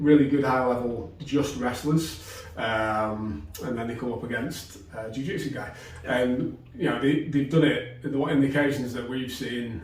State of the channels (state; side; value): identical; both; correlation 1.00